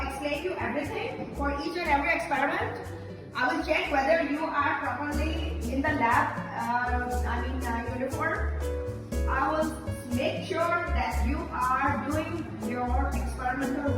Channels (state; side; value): identical; both; correlation 1.00